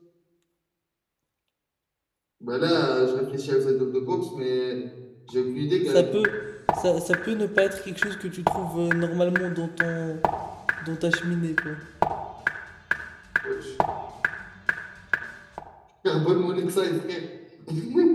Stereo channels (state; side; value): identical; both; correlation 1.00